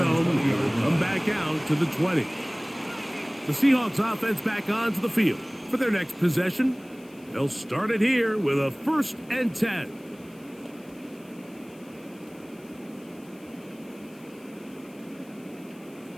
It'll come back out to the 20. The Seahawks offense back onto the field for their next possession. They'll start it here with a 1st and 10.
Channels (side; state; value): left; noise; hiss, 27 dB below the sound